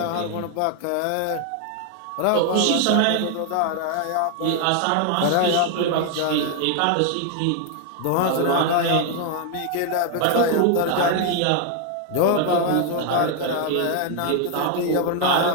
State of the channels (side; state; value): both; different; correlation 0.00